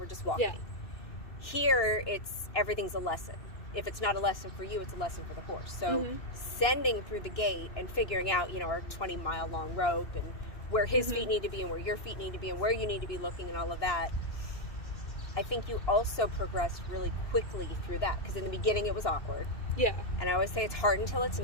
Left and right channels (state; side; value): late; right; 2.9 ms